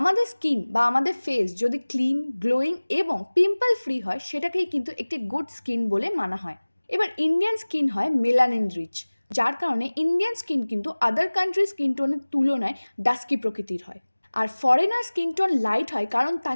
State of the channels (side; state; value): both; inverted; correlation -1.00